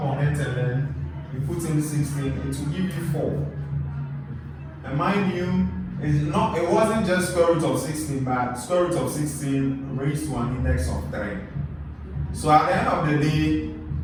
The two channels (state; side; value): identical; both; correlation 1.00